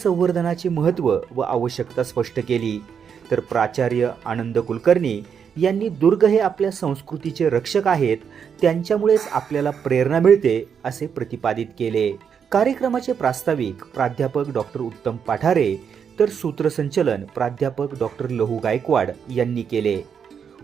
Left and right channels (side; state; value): left; quieter; 7.2 dB